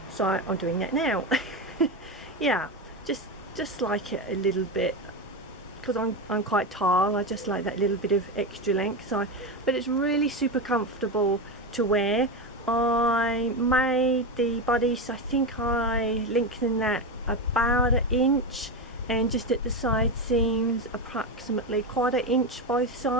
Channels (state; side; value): normal; both; correlation 0.15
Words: so I'm doing that now. Yeah, just like it a little bit, because I'm quite tall, I just like that little bit of extra length. So, but it's really super comfortable to wear. I made the bodice, I think I lengthened that about 1 inch, and just at the side seams approximately 1/4 inch both